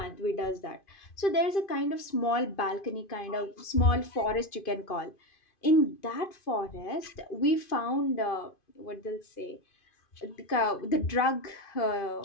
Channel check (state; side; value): late; right; 2.5 ms